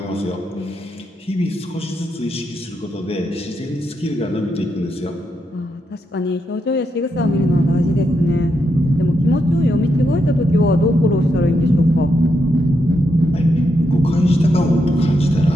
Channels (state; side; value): normal; both; correlation 0.82